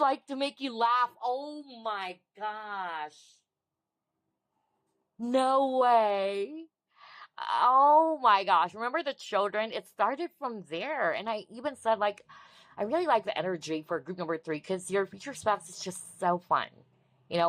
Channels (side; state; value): both; identical; correlation 1.00